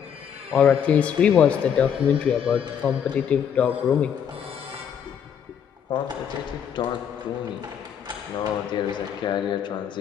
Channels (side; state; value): right; quieter; 8.2 dB